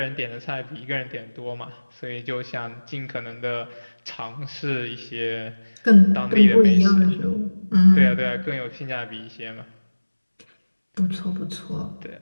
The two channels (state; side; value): inverted; both; correlation -1.00